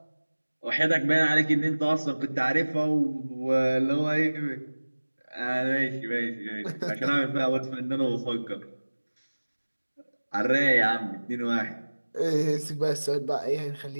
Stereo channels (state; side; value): inverted; both; correlation -1.00